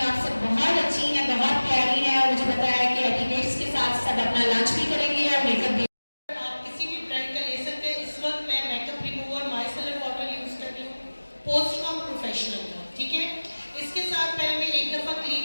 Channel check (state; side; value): inverted; both; correlation -1.00